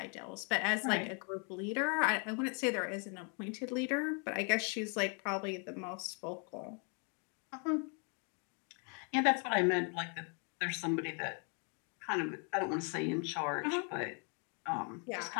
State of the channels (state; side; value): quieter; right; 38.0 dB